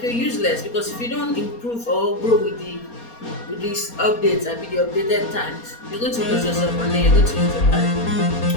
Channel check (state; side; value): late; right; 4.2 ms